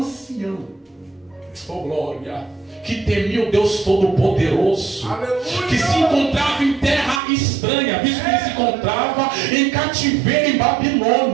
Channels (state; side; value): drops out; left; at 7.2 s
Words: Oh glória! Que temia o Deus Todo-Poderoso, que se encontrava em terra estranha, visto que ele se encontrava em cativeiro em